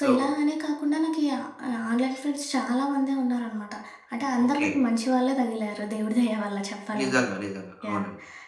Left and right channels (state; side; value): identical; both; correlation 1.00